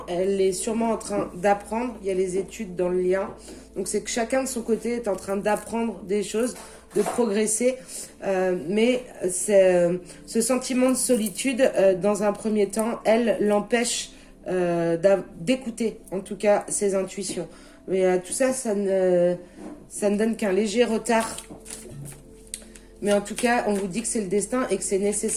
elle est sûrement en train d'apprendre. Il y a les études dans le lien. Donc, c'est que chacun de son côté est en train d'apprendre des choses, de progresser. Mais ce sentiment de solitude, dans un premier temps, elle l'empêche d'écouter, en tout cas, ses intuitions. Mais tout ça, ça ne donne qu'un léger retard. Mais en tout cas, on vous dit que c'est le destin et que c'est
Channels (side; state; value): both; identical; correlation 1.00